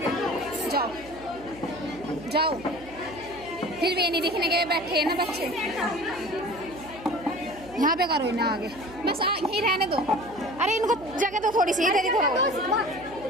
जाओ जाओ। फिर भी नहीं दिखने के बैठे हैं ना बच्चे। यहाँ पे करो ना आगे, बस यहीं रहने दो। अरे इनको जगह तो थोड़ी सी इधर ही करो,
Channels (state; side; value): noise; right; hum, 19 dB below the sound